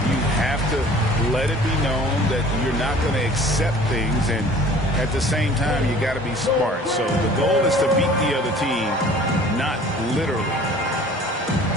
You have to let it be known that you're not going to accept things, and at the same time, you got to be smart. So the goal is to beat the other team, not literally.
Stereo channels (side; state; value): both; normal; correlation 0.48